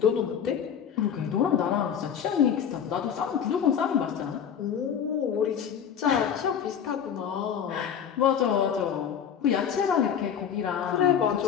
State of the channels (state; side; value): quieter; right; 8.2 dB